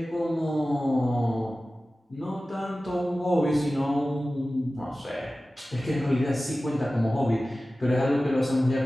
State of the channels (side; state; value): both; normal; correlation 0.96